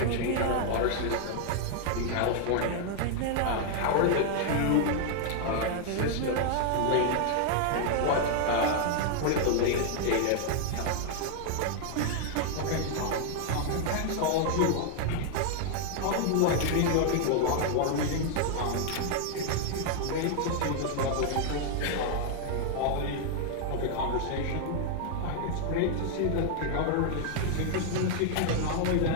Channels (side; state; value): both; different; correlation 0.00